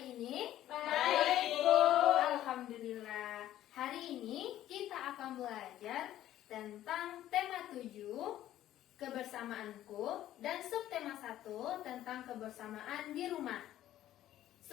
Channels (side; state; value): right; quieter; 13.0 dB